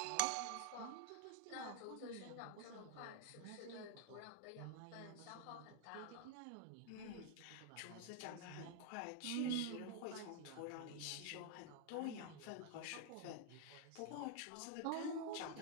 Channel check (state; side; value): different; both; correlation 0.00